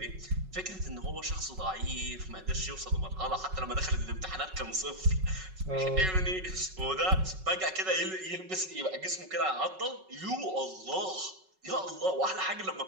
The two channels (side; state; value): left; late; 5.4 ms